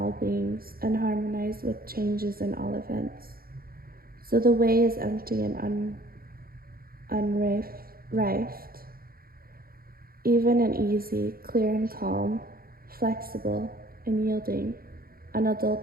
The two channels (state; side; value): late; left; 0.43 ms